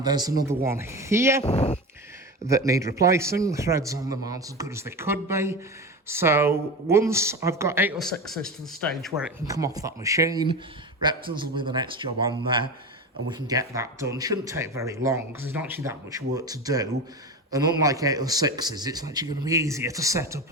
there's another one here that need replacing. The threads on them aren't as good as they could be. So once I've got 806s to the stage where it can come off that machine, Reptons will be the next job on there, and we can get that done. Shouldn't take very long, because there's not actually that much work to do. And unlike 806s, it's actually going to be easier to set up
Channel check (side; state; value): both; normal; correlation 0.25